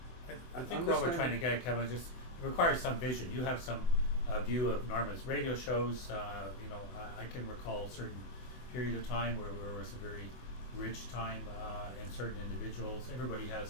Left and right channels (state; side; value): late; right; 24 ms